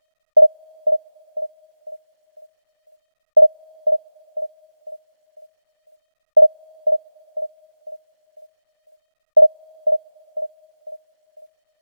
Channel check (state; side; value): inverted; both; correlation -1.00